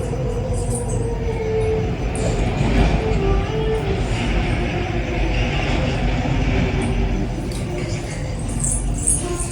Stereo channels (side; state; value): both; identical; correlation 1.00